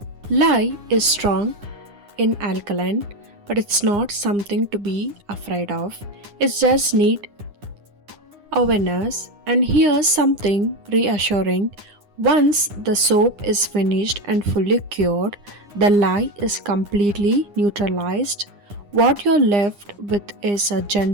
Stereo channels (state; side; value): late; left; 9.8 ms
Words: Lye is strong in alkaline, but it's not something to be afraid of. It's just need awareness. And here's something reassuring. Once the soap is finished and fully cured, the lye is completely neutralized. What you're left with is a